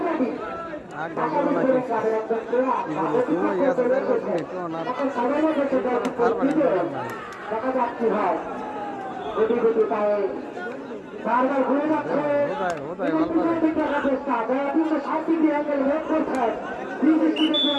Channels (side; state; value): both; identical; correlation 1.00